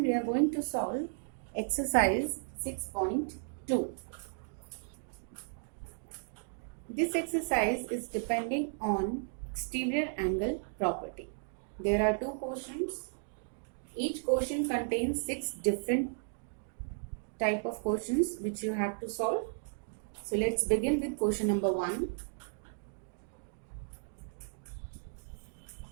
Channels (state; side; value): silent; left; digital silence